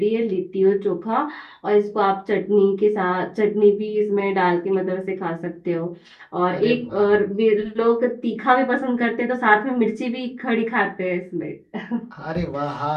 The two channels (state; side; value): identical; both; correlation 1.00